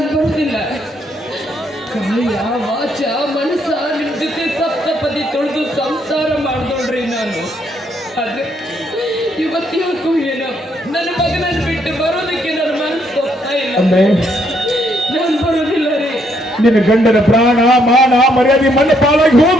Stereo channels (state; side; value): normal; both; correlation 0.72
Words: ಬರೋದಿಲ್ಲ. ಕಾಯ ವಾಚ ಮನಸ್ಸ ನಿಮ್ ಜೊತೆ ಸಪ್ತಪದಿ ತೊಳೆದು ಸಂಸಾರ ಮಾಡ್ದೋಳ್ರಿ ನಾನು. ಆದ್ರೆ ಇವತ್ತು ಏನೋ ನನ್ನ ಮಗನನ್ನು ಬಿಟ್ಟು ಬರೋದಕ್ಕೆ ನನ್ನ ಮನಸ್ಸು ಹೋಗ್ತಾ ಇಲ್ಲ. ಅಂದ್ರೆ ನಾನು ಬರೋದಿಲ್ಲ ರೀ. ನಿನ್ನ ಗಂಡನ ಪ್ರಾಣ ಮಾನ ಮರ್ಯಾದೆ ಮಣ್ಣು ಪಾಲಾಗಿ